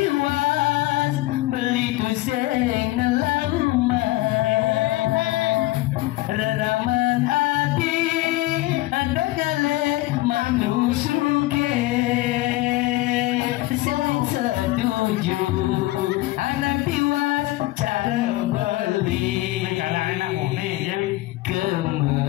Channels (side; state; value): right; quieter; 18.4 dB